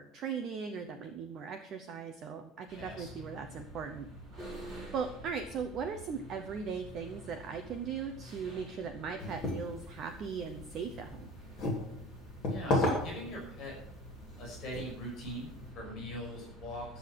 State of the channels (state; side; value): normal; both; correlation 0.40